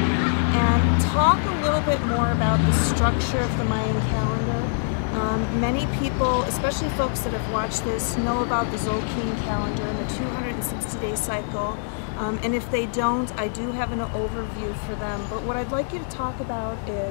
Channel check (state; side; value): silent; right; digital silence